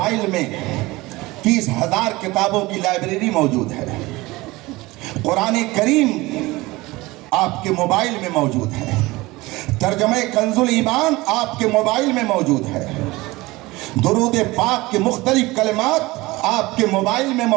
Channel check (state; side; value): quieter; left; 20.8 dB